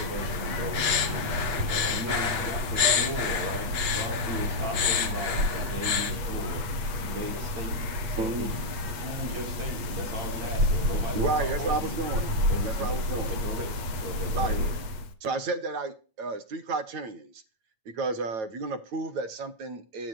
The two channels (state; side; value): late; left; 8.5 ms